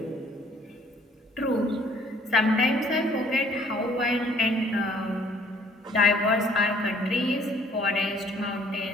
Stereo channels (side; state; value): both; normal; correlation 0.59